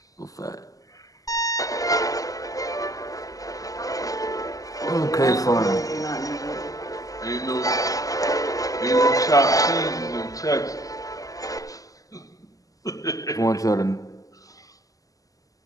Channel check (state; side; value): late; right; 0.17 ms